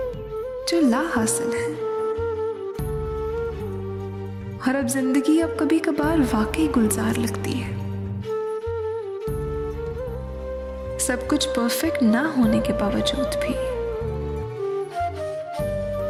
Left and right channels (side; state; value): both; identical; correlation 1.00